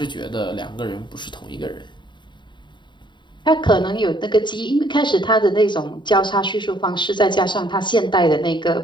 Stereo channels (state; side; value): late; right; 0.23 ms